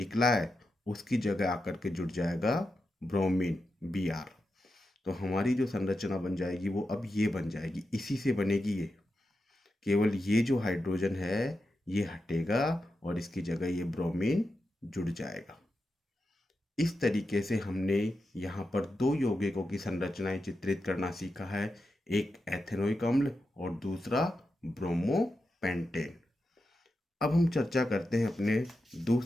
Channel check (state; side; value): normal; both; correlation 0.89